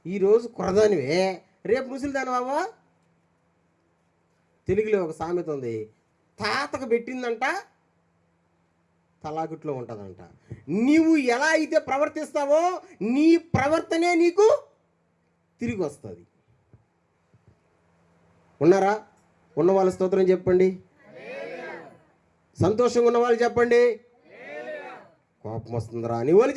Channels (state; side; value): identical; both; correlation 1.00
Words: ఈరోజు కుర్రదానివే, రేపు ముసలిదానివి అవ్వా. తెలుగులో ఒక సామెత ఉంది, తాతకు పెట్టిందంట తలాగుట్లో ఉంటుందంట. నీవు ఎలా అయితే ప్రవర్తిస్తావో నీ ప్రవర్తనే నీకు తిరిగి వస్తుంది. ఉన్నారా? ఉన్న వాళ్ళ స్తోత్రం చెప్పండి. సంతోషంగా ఉన్న వాళ్ళు చెప్పండి. కోపం వస్తుందిరా అని వాళ్ళు